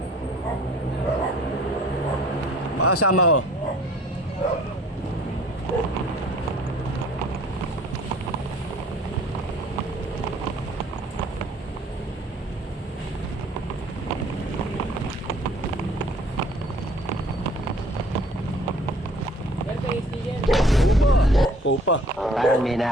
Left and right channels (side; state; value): both; normal; correlation 0.54